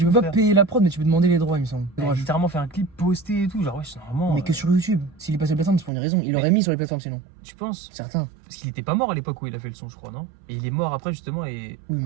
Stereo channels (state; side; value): drops out; left; at 5.9 s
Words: tout, peux pas frère. payer la prod, mais tu peux demander les droits, il me semble. Il a littéralement fait un clip posté et tout, genre ouais, c'est normalement. Mais que sur YouTube. S'il est passé sur les plateformes, c'est pour une raison. Il l'aurait mis sur les plateformes sinon. Tu penses? Certains. Parce qu'il était pas mort à l'époque où il a fait le son, je crois, non? Et il est mort après justement et Oui, mais